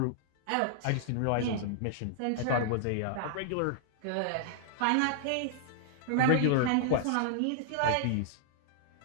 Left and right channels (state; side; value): different; both; correlation -0.01